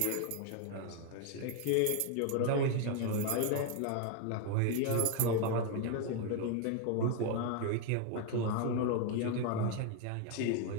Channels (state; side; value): different; both; correlation 0.01